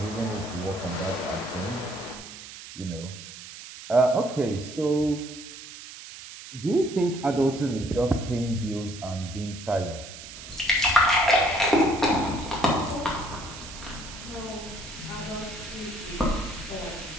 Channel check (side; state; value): right; noise; hiss, 14 dB below the sound